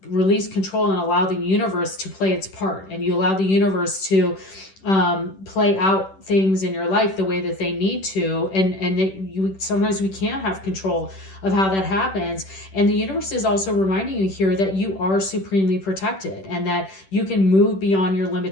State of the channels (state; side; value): late; right; 10 ms